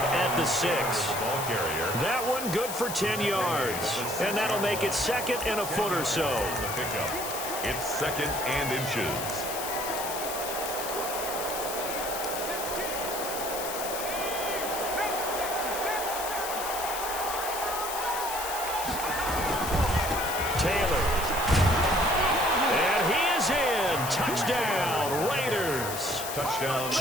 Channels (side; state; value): left; noise; hiss, 6 dB below the sound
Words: at the 6. That one good for 10 yards. And that'll make it 2nd and a foot or so. It's 2nd and inches. Taylor. And he is in. Touchdown, Raiders. Touchdown.